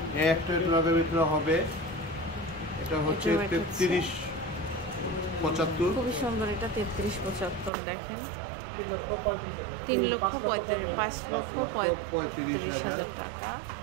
একটা লাখের ভিতরে হবে। এটা হচ্ছে 33,75। খুবই সুন্দর। এটা 33,75 দেখেন। 3,35,000 টাকা।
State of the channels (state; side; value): drops out; left; at 7.7 s